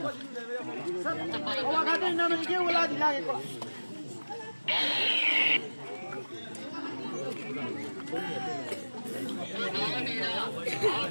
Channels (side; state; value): both; inverted; correlation -1.00